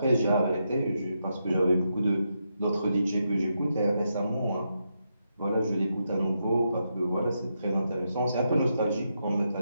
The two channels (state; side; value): inverted; both; correlation -0.83